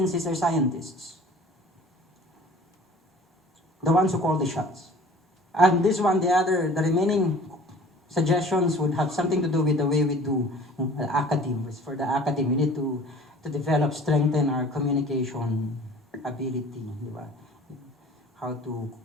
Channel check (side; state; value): both; normal; correlation 0.47